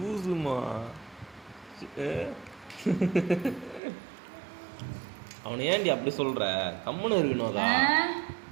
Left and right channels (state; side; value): drops out; left; at 3.8 s